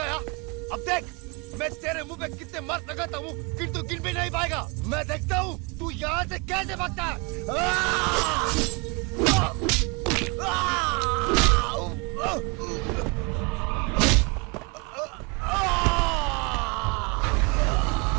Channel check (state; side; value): quieter; left; 29.8 dB